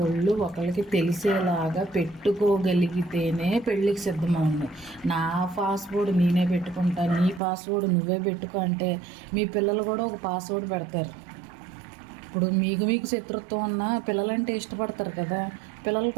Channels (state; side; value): drops out; left; at 7.4 s